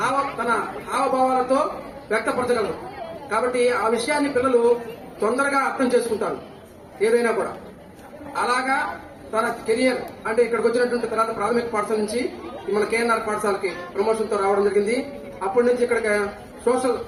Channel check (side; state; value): both; identical; correlation 1.00